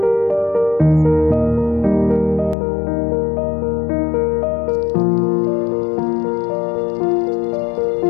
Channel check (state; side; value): drops out; right; at 2.6 s